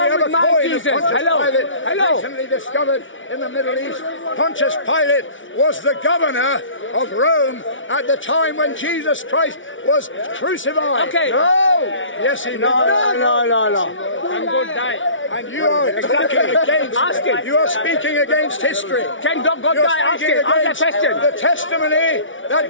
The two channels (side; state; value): right; late; 0.56 ms